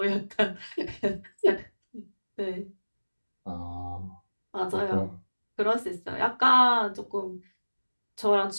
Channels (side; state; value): both; inverted; correlation -1.00